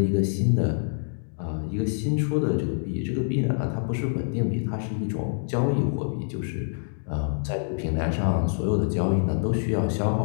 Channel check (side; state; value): right; silent; digital silence